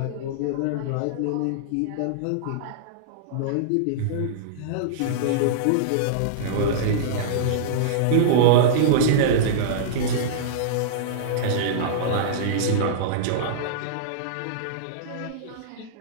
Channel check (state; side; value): different; both; correlation -0.03